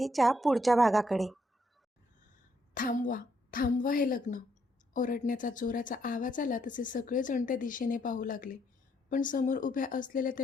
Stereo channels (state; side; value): normal; both; correlation 0.73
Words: पुढच्या भागाकडे. थांबवा थांबवा हे लग्न. ओरडण्याचा जोराचा आवाज आला तसे सगळेजण त्या दिशेने पाहू लागले. पण समोर उभ्या असलेल्या